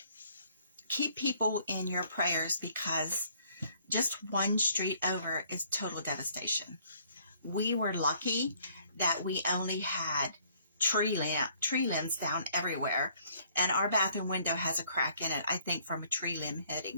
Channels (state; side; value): inverted; both; correlation -0.63